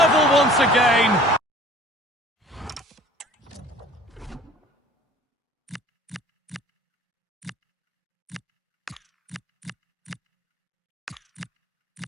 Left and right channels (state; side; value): normal; both; correlation 0.48